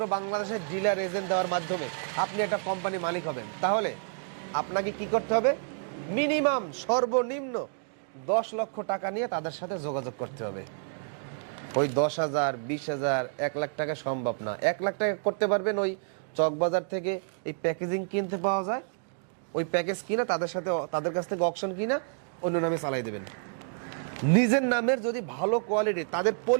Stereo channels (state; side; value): silent; left; digital silence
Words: বাংলাদেশের ডিলার এজেন্ট দেওয়ার মাধ্যমে আপনি একটা কোম্পানি মালিক হবেন, তাহলে আপনাকে কি করতে হবে? মিনিমাম সর্বনিম্ন 10 লক্ষ টাকা নিয়ে তাদের সাথে যোগাযোগ করতে হবে। ওই 10,000, 20,000, 1 লাখ টাকা সম্ভব না। 1 লাখ টাকা করতে পারবেন ওই চকবাজার থেকে এই প্যাকেজিং কিনতে পাওয়া যায়, ওই প্যাকেজ কিনা তাদের কাছ থেকে অকশন কিনা অন্য নামে চালাই দেবেন। নিজের নামের যদি ভালো কোয়ালিটি, তাদের